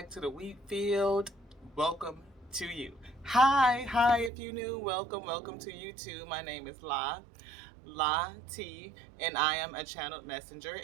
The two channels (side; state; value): left; drops out; at 4.3 s